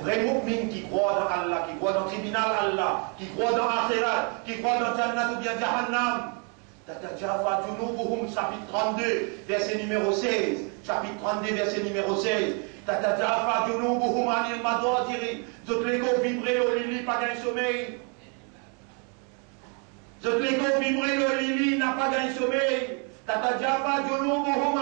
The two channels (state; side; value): quieter; left; 37.4 dB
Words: vrai mu'min qui croit dans Allah, qui croit dans le tribunal Allah, qui croit dans l'Akhirat, qui croit dans Jannat ou bien Jahannam. Tatajafa Junubuhum, chapitre 32, verset numéro 16. Chapitre 32, verset numéro 16. Tatajafa Junubuhum anil madwajiri. Toutes les corps vibrer au lit, pas d'un sommeil. Toutes les corps vibrer au lit, n'a pas d'un sommeil. Tatajafa Junubuhum